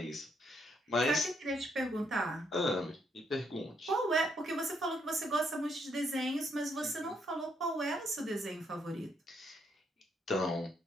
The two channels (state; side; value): normal; both; correlation 0.74